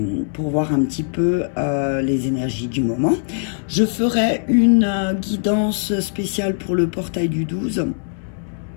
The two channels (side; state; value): right; silent; digital silence